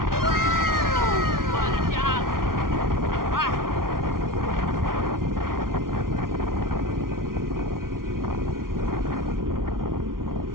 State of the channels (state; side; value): late; left; 0.92 ms